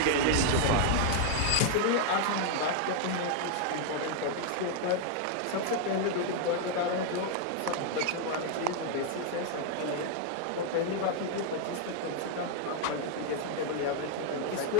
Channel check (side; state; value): both; different; correlation 0.00